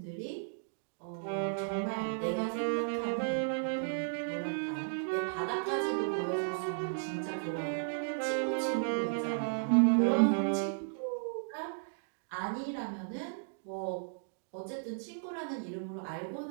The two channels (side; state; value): left; silent; digital silence